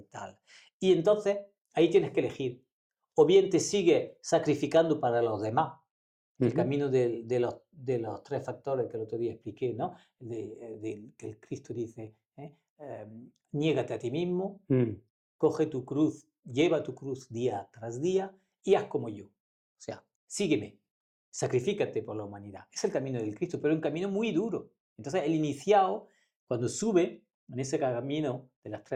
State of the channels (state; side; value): identical; both; correlation 1.00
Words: tal. Y entonces ahí tienes que elegir. o bien te sigue sacrificando para los demás. El Ujú. camino de los tres factores que el otro día expliqué, ¿no? Que el Cristo dice, niégate a ti mismo, Mm. coge tu cruz, lleva tu cruz día tras día y haz como yo. O sea, sígueme, sacrifícate por la humanidad. Es el camino del Cristo, pero es un camino muy duro. Entonces, el iniciado, cuando sube en ese camino de las